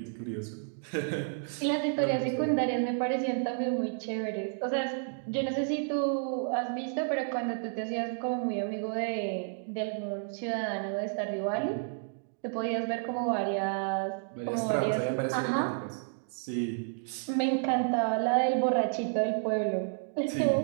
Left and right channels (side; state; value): left; silent; digital silence